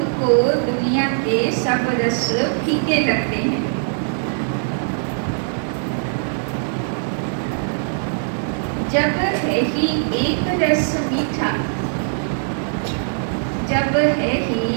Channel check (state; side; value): silent; left; digital silence